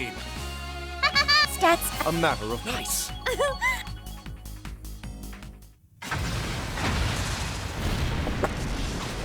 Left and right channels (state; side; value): identical; both; correlation 1.00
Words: Stats. A matter of nice.